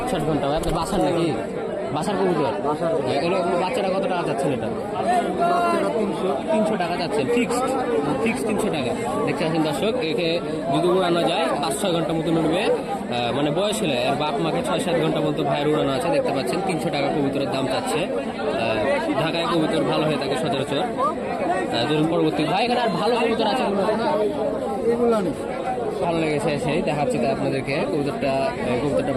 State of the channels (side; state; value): both; identical; correlation 1.00